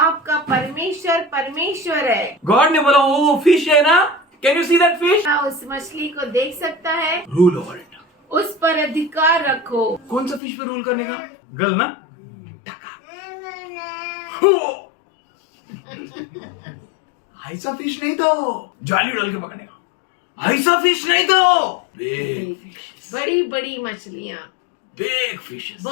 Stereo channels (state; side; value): drops out; right; at 10.4 s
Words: परमेश्वर परमेश्वर है। God ने बोला वो फिश है ना, can you see that fish? क्या उस मछली को देख सकता है? Rule over it. उस पर अधिकार रखो। कौन सा फिश पे रूल करने का? गल ना? ऐसा फिश नहीं तो जाली डाल के पकड़ने का। ऐसा फिश नहीं तो big fishes. बड़ी बड़ी मछलियाँ, Big fishes.